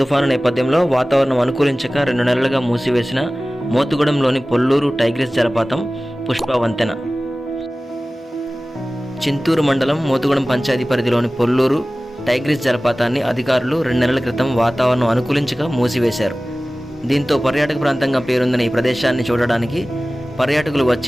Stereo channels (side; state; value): both; normal; correlation 0.97